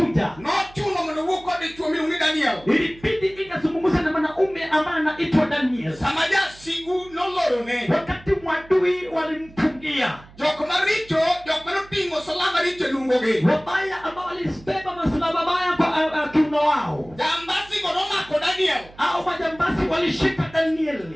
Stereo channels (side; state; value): right; noise; hum, 22 dB below the sound